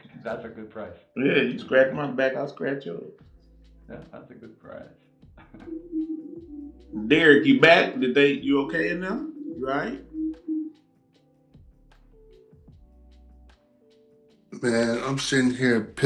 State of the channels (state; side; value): identical; both; correlation 1.00